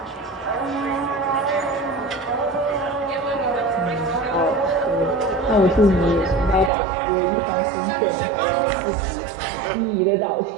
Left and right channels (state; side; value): drops out; left; at 6.7 s